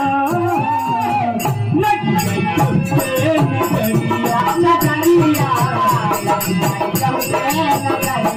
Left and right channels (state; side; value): identical; both; correlation 1.00